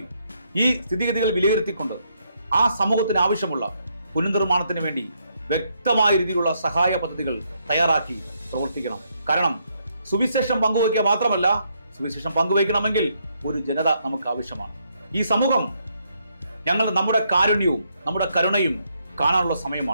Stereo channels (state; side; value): inverted; both; correlation -0.75